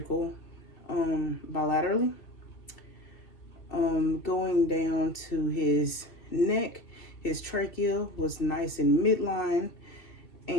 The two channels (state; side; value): late; right; 2.7 ms